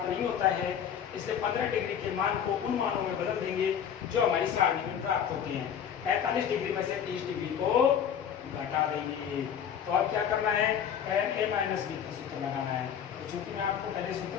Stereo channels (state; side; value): quieter; right; 8.5 dB